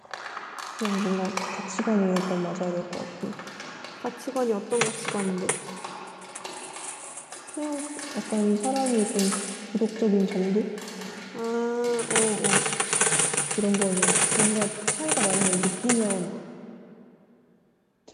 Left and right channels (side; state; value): both; identical; correlation 1.00